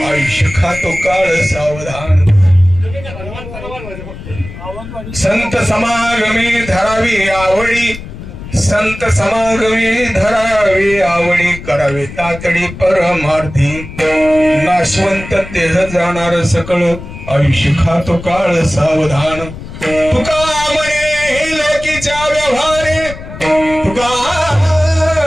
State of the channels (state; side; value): noise; left; rumble, 12 dB below the sound